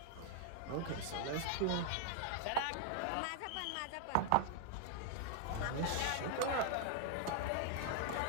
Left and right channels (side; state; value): both; different; correlation 0.00